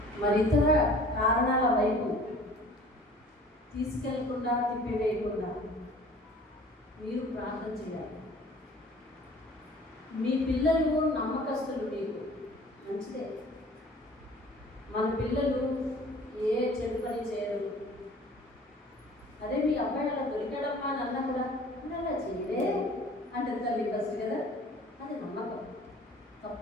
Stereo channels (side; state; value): both; normal; correlation 0.49